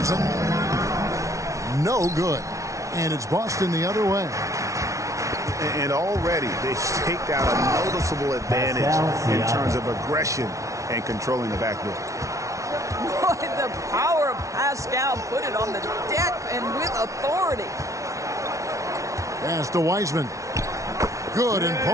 No good. And it's Boston the other way. And already they've staked out a noticeable advantage in terms of aggression and controlling the backboard. Boy, the power of Pascal put it on the deck and with authority. Pass to Wiseman. Good, and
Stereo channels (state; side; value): late; left; 0.15 ms